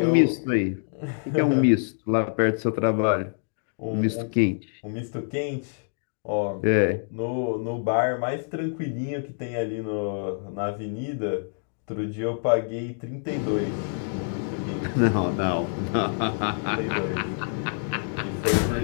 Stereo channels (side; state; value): right; silent; digital silence